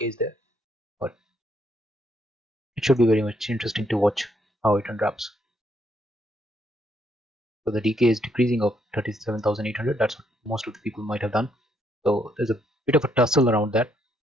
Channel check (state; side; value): normal; both; correlation 0.73